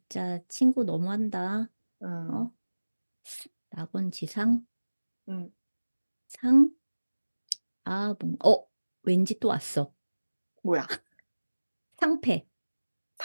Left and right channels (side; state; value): both; inverted; correlation -1.00